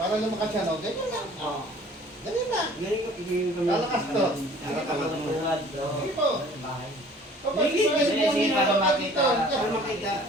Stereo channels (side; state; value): both; normal; correlation 0.51